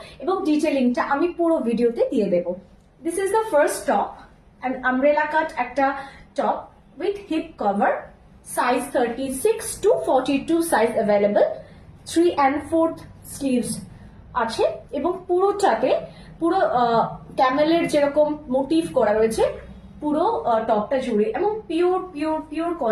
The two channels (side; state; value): both; identical; correlation 1.00